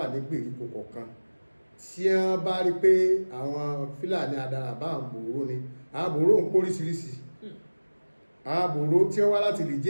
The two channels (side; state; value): both; inverted; correlation -1.00